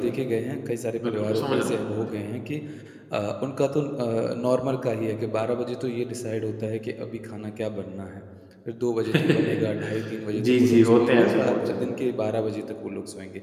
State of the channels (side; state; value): both; identical; correlation 1.00